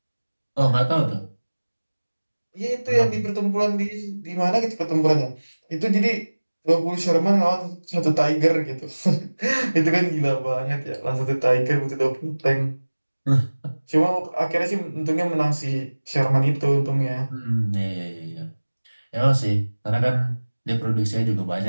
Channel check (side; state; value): both; inverted; correlation -1.00